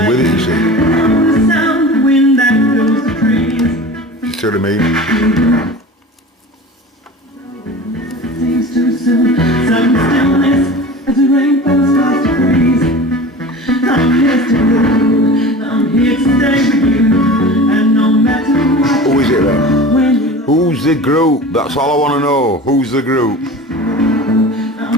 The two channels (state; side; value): normal; both; correlation 0.36